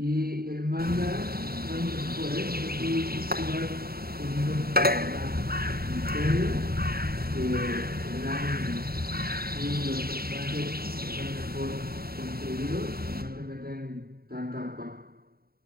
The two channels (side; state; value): left; late; 0.44 ms